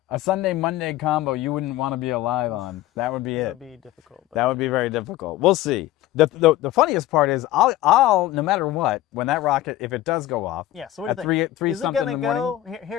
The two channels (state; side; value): quieter; right; 14.7 dB